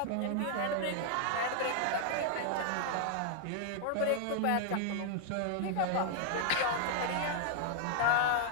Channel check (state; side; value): different; both; correlation 0.00